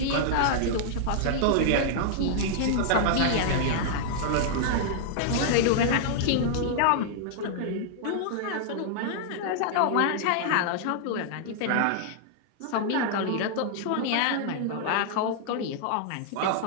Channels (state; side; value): different; both; correlation -0.01